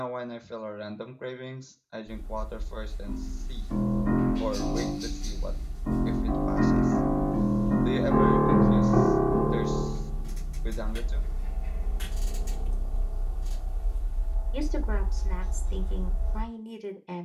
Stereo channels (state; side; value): identical; both; correlation 1.00